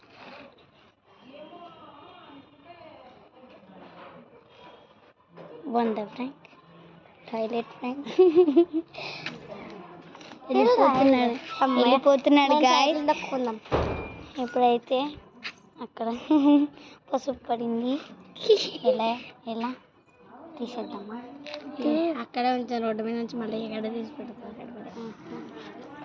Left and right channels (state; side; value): identical; both; correlation 1.00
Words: వంద ప్రాంక్ టాయిలెట్ ప్రాంక్ వెళ్ళిపోతున్నాడు గాయ్స్. ఇప్పుడైతే అక్కడ పసుపు పడింది. ఎలా తీసేద్దామా? అక్కడే ఉంచాను. రోడ్డు మీద నుంచి మళ్ళీ ఎక్కడ తీసి పెడతా.